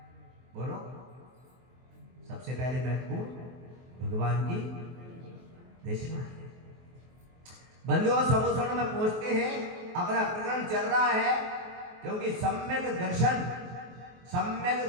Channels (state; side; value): late; left; 23 ms